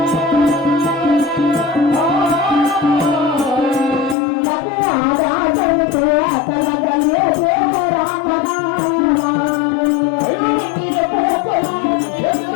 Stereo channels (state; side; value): drops out; right; at 4.2 s